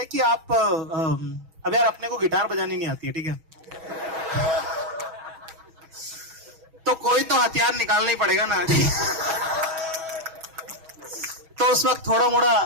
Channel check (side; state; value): left; late; 6.2 ms